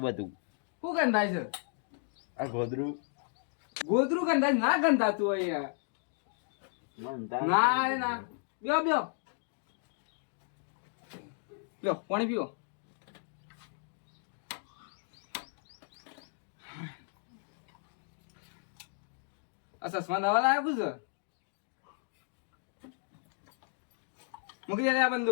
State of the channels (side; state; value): right; silent; 55 dB below the other